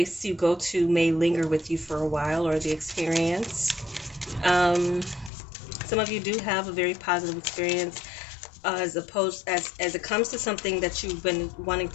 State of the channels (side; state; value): right; drops out; at 5.3 s